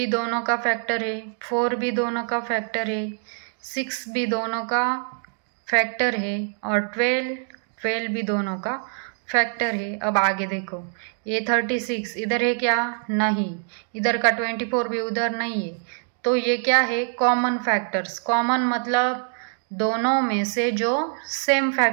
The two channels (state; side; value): silent; left; 62 dB below the other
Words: दोनों का फैक्टर है, 4 भी दोनों का फैक्टर है, 6 भी दोनों का फैक्टर है और 12 भी दोनों का फैक्टर है। अब आगे देखो, ये 36 इधर है क्या? नहीं। इधर का 24 भी उधर नहीं है, तो ये क्या है? Common factors. कॉमन मतलब दोनों में से जो सेम